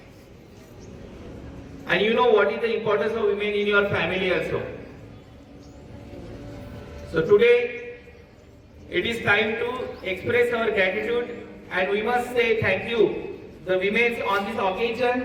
And you know what is the importance of women in your family also. So today, it is time to express our gratitude and we must say thank you, the women on this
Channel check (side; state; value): both; identical; correlation 1.00